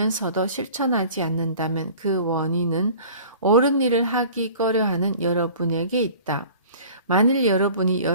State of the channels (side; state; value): both; inverted; correlation -0.46